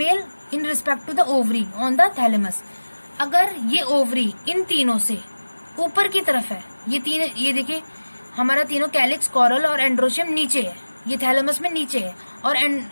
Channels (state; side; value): inverted; both; correlation -1.00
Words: respect to the ovary on the thalamus. अगर ये ओवरी इन तीनों से ऊपर की तरफ है, ये देखिए हमारा तीनों कैलिक्स, कॉरल और एंड्रोशियम नीचे है, ये थैलेमस में नीचे है, और